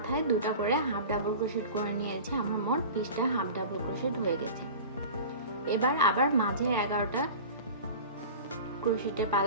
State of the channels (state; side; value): inverted; both; correlation -0.36